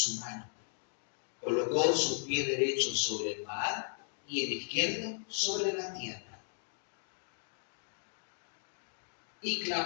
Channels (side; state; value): right; silent; digital silence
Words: mano. Colocó su pie derecho sobre el mar y el izquierdo sobre la tierra. Y